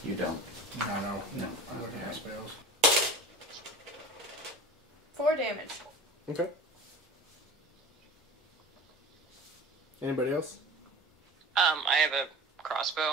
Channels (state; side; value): normal; both; correlation 0.36